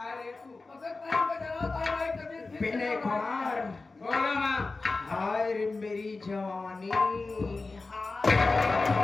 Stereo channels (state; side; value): quieter; right; 3.6 dB